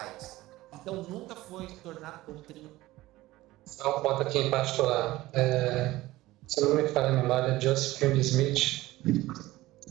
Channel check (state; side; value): quieter; left; 17.6 dB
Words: Então nunca foi tornado doutrina. Só um ponto aqui em particular. Se não me falha a memória, Joseph Smith,